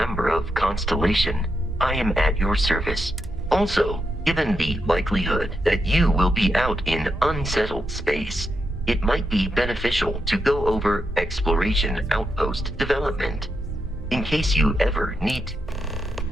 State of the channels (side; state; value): both; normal; correlation 0.84